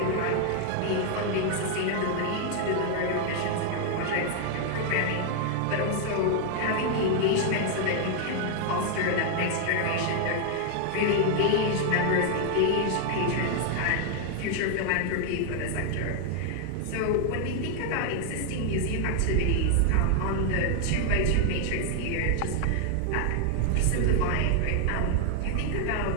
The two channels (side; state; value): both; different; correlation 0.00